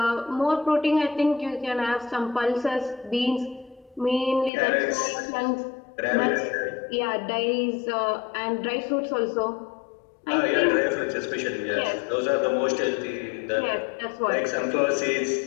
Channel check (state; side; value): drops out; right; at 4.5 s